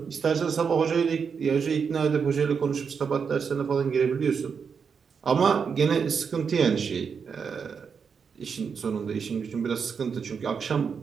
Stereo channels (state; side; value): quieter; left; 6.2 dB